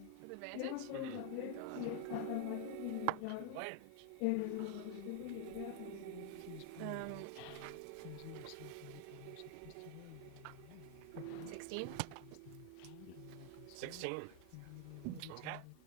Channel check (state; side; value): different; both; correlation 0.00